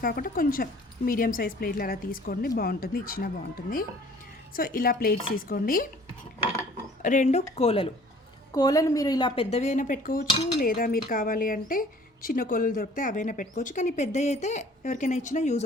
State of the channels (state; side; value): normal; both; correlation 0.52